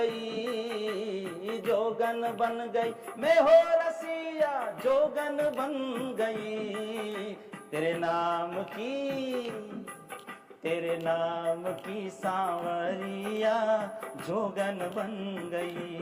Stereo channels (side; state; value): both; identical; correlation 1.00